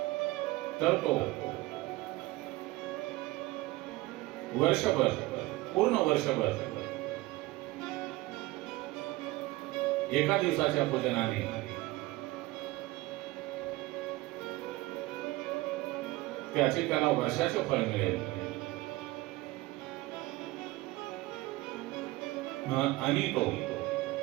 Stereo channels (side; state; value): left; quieter; 19.6 dB